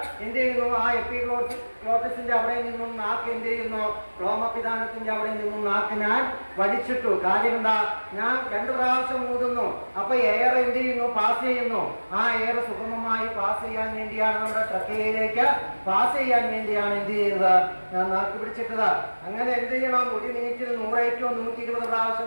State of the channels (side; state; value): both; inverted; correlation -1.00